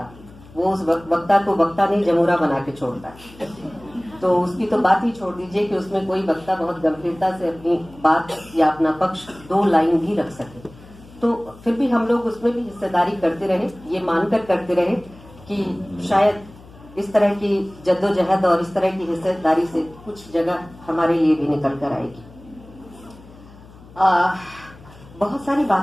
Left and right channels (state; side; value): noise; left; hum, 22 dB below the sound